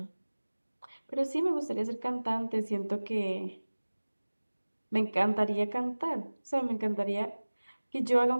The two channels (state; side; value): inverted; both; correlation -1.00